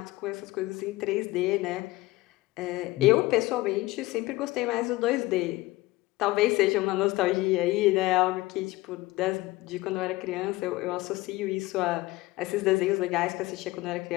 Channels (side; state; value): right; quieter; 19.6 dB